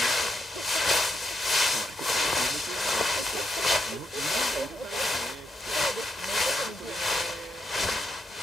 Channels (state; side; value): normal; both; correlation 0.80